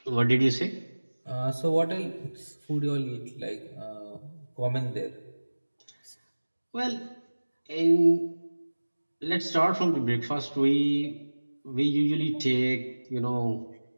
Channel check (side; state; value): both; inverted; correlation -1.00